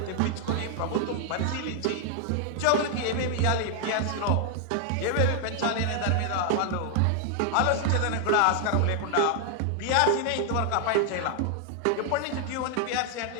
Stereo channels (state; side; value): different; both; correlation 0.00